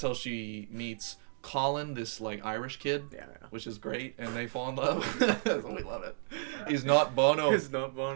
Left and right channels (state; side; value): silent; left; digital silence